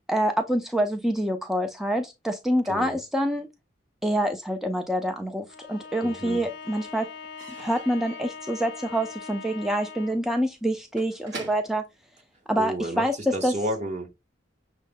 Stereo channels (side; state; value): both; normal; correlation 0.78